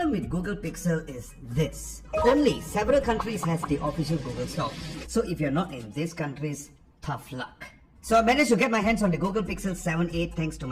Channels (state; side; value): identical; both; correlation 1.00